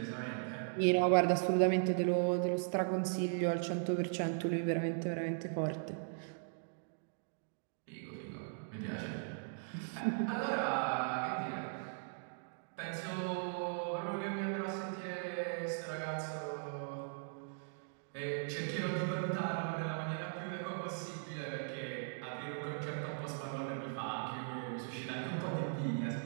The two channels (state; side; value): silent; left; digital silence